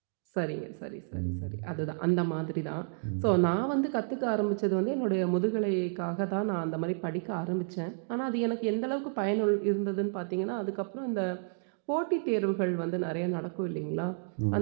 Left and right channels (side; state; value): left; silent; digital silence